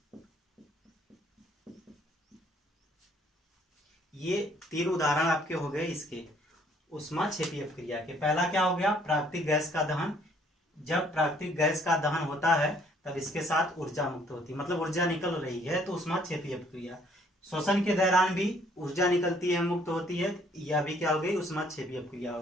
ये 3 उदाहरण आपके हो गए इसके ऊष्माक्षेपी अपक्रिया के। पहला क्या हो गया, प्राकृतिक गैस का दहन। जब प्राकृतिक गैस का दहन होता है तब इसके साथ ऊर्जा मुक्त होती है, मतलब ऊर्जा निकल रही है, तो ऊष्माक्षेपी अपक्रिया। शोषण के दौरान भी ऊर्जा निकलती है, मुक्त होती है, यह भी क्या हो गई, ऊष्माक्षेपी अपक्रिया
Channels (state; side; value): normal; both; correlation 0.62